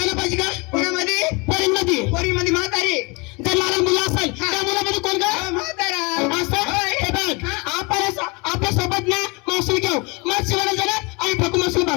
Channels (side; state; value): right; quieter; 28.3 dB